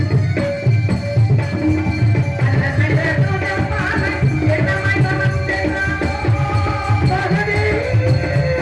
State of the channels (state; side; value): identical; both; correlation 1.00